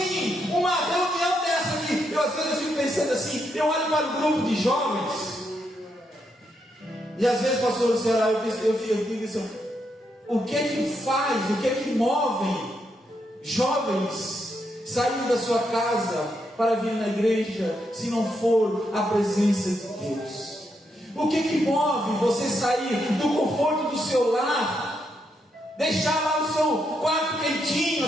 uma reunião dessa aqui? Às vezes eu fico pensando assim, eu olho para o grupo de jovens, e às vezes, pastor Luciano, eu fico assim, o que faz, o que move jovens saindo da sua casa para vir na igreja, se não for a presença de Deus? O que move você sair do conforto do seu lar, deixar lá o seu quarto quentinho,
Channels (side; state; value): both; normal; correlation 0.80